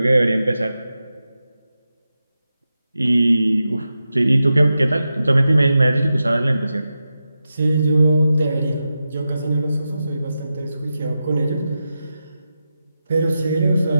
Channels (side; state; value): both; inverted; correlation -0.91